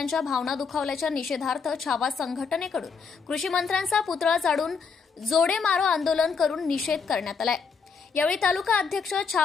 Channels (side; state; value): right; quieter; 5.5 dB